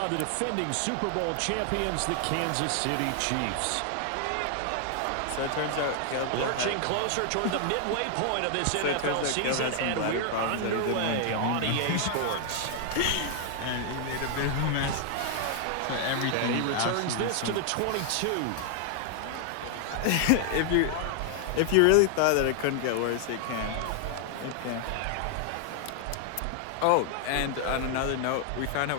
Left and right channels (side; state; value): both; different; correlation 0.00